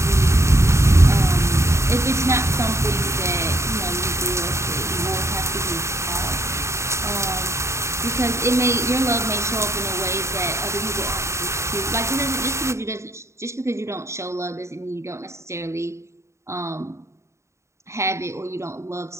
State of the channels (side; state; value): left; late; 0.14 ms